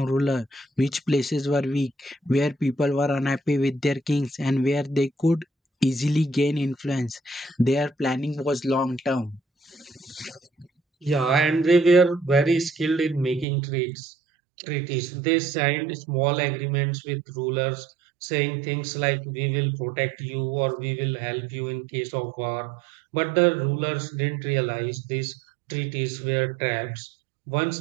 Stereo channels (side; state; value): left; drops out; at 13.5 s